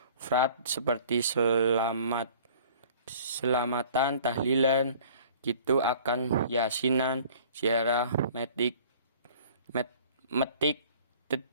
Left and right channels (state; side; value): inverted; both; correlation -0.50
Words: frat seperti selamatan, tahlilan, gitu akan yasinan, ziarah, metik,